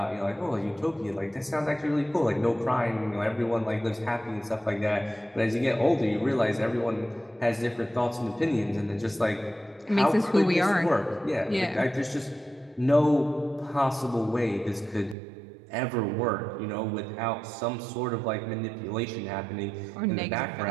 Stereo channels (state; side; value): drops out; left; at 15.2 s